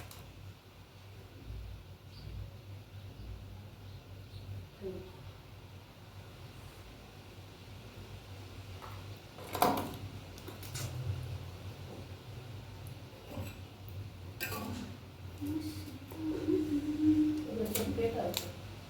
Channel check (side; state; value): both; identical; correlation 1.00